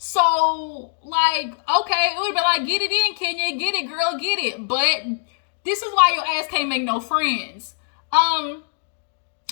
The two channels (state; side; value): silent; right; digital silence